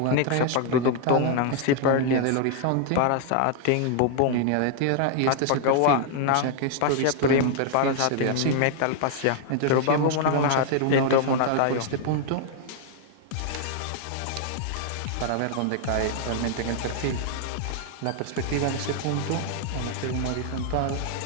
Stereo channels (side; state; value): both; different; correlation 0.00